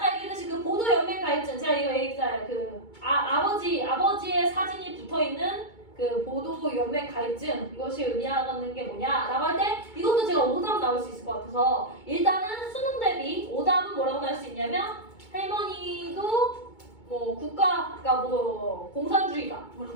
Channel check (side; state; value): right; late; 2.2 ms